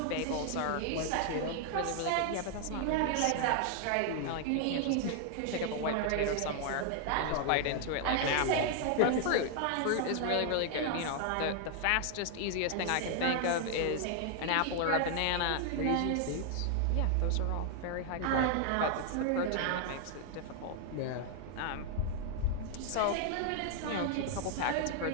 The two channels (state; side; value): different; both; correlation 0.00